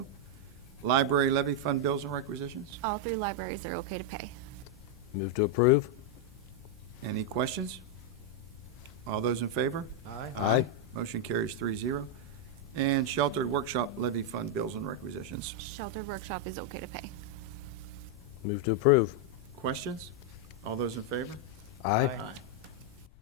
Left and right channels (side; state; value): both; normal; correlation 0.00